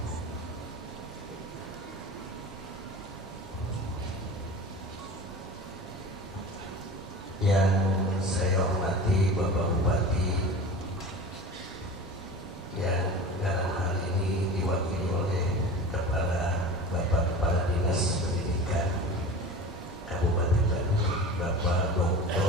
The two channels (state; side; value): normal; both; correlation 0.35